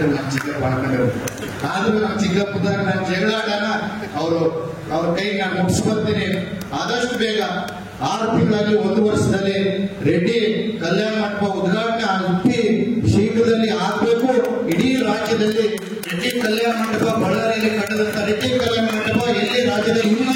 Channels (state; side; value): identical; both; correlation 1.00